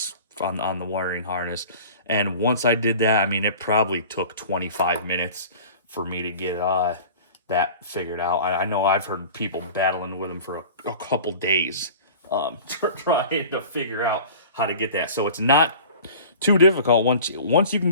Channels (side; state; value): both; inverted; correlation -0.40